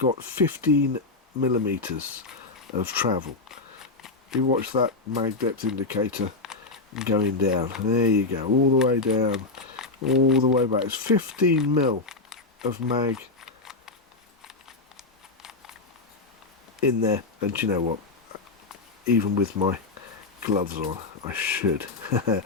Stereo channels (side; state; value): right; quieter; 3.6 dB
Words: 15mm of travel. You watch that mag depth indicator going down. There you go, all the way down, all the way back. It's 15mm of mag in there, and do you know what, even with my gloves on, I should.